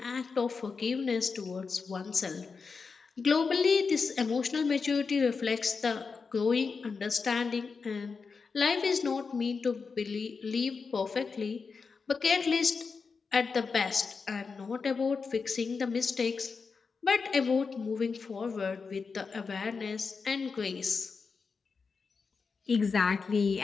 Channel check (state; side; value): quieter; right; 5.0 dB